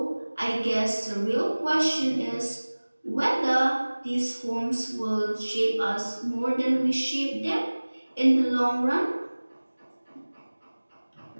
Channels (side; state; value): both; inverted; correlation -1.00